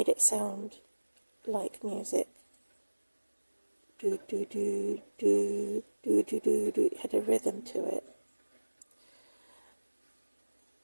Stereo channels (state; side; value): inverted; both; correlation -1.00